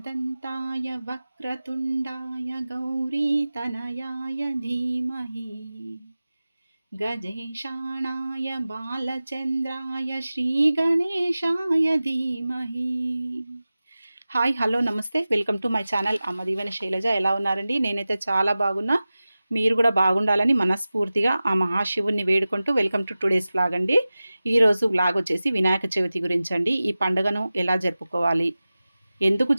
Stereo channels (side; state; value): both; inverted; correlation -0.96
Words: वक्रतुण्डाय गौरीतनयाय धीमहि गजेशाणाय బాలచంద్రాయ శ్రీగణేశాయ ధీమహి. హాయ్ హలో నమస్తే, వెల్కమ్ టు మై ఛానల్ అమ్మ దీవెన శైలజ. ఎలా ఉన్నారండి? నేనైతే చాలా బాగున్నా. మీరు కూడా బాగుండాలని మనస్ఫూర్తిగా ఆ మహాశివుణ్ణి వేడుకుంటూ వెల్కమ్ టు టుడేస్ వ్లాగ్ అండి. ఈరోజు వ్లాగ్ వచ్చేసి వినాయక చవితి గురించి అండి. ఈ పండుగను ఎలా జరుపుకోవాలి, ఎందుకు